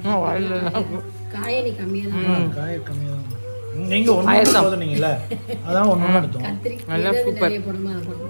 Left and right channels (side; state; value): both; inverted; correlation -1.00